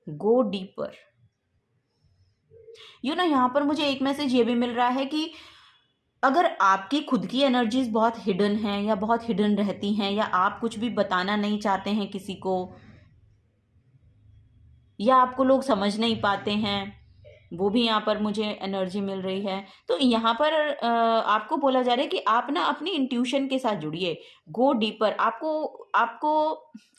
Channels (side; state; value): both; identical; correlation 1.00